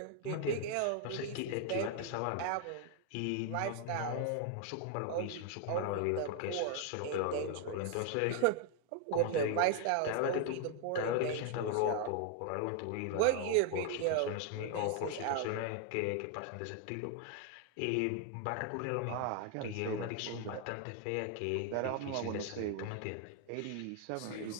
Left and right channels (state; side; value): different; both; correlation 0.00